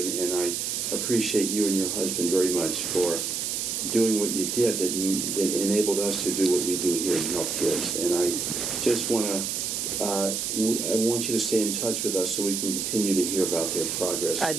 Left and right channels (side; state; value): right; noise; hiss, 2 dB below the sound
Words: and I appreciate you and your husband very much for doing what you did that enabled us to do what we do here and help kids. And I just want to I want you to stay in touch with us so we can continue to hear about their progress. I'd